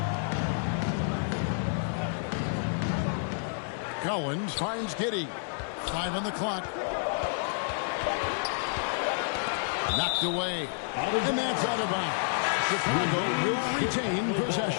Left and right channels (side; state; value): right; silent; digital silence